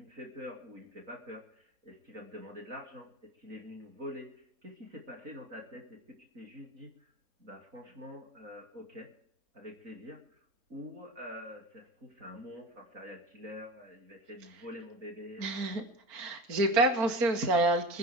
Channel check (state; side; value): late; left; 4.4 ms